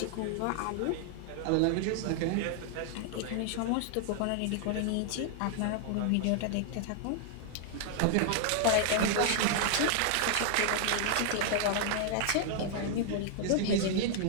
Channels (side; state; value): both; different; correlation 0.00